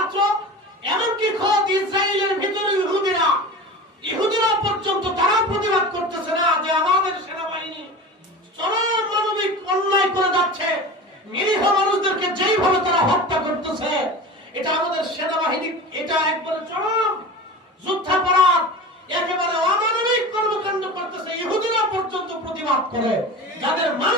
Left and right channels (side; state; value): both; normal; correlation 0.32